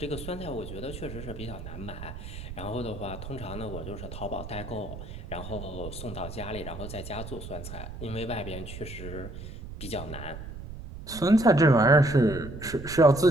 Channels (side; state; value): right; noise; rumble, 10 dB below the sound